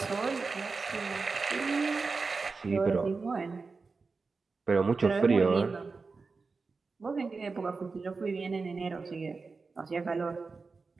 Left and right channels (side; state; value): left; quieter; 4.3 dB